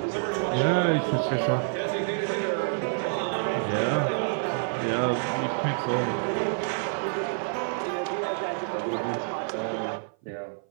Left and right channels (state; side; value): silent; left; 56 dB below the other